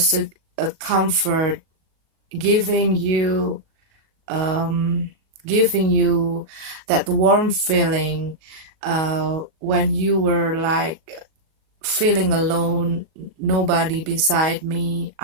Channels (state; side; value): late; left; 38 ms